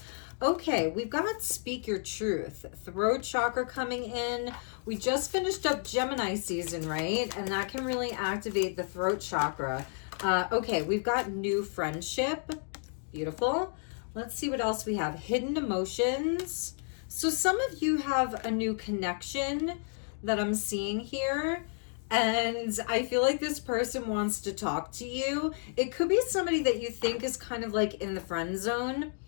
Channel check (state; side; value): silent; right; 57 dB below the other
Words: Okay, we've got Speak Your Truth, throat chakra coming in. We just finished up Gemini season, right? And that can really activate the throat chakra. Okay, we've got new friendship. Beautiful. Let's see what else we have. Hidden emotions. So some of you have a new connection that I'm seeing here. And I feel like this person wants to talk to you. It could be somebody that you think is kind of like in the friend zone.